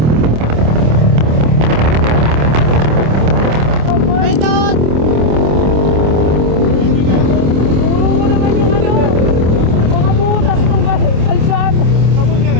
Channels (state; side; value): late; left; 26 ms